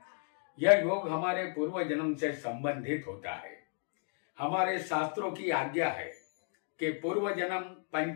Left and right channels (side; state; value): right; silent; 55 dB below the other